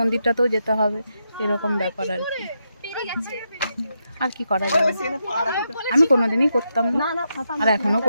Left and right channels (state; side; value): inverted; both; correlation -0.84